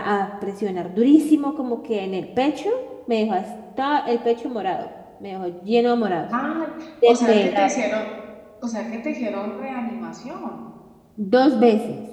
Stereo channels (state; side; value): identical; both; correlation 1.00